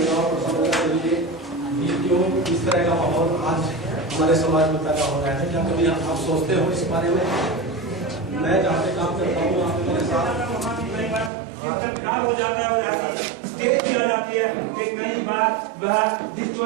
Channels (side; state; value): left; drops out; at 11.3 s